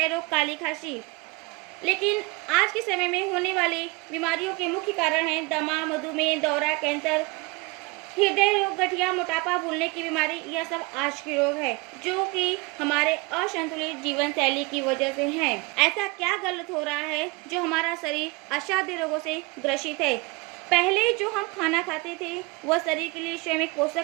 रोग, काली खांसी। लेकिन आज के समय में होने वाली बीमारियों के मुख्य कारण हैं दमा, मधुमेह, दौरा, कैंसर, हृदय रोग, गठिया, मोटापा, भूलने की बीमारी। यह सब आज के रोग है, जो कि हमारे असंतुलित जीवन शैली की वजह से हैं। ऐसा क्या गलत हो रहा है जो हमारा शरीर असाध्य रोगों से ग्रसित है? पहले जो हम खाना खाते थे वह शरीर के लिए स्वयं एक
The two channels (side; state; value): left; quieter; 26.1 dB